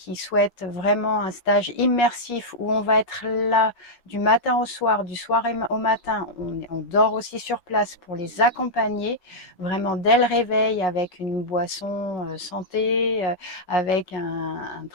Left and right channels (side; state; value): right; late; 17 ms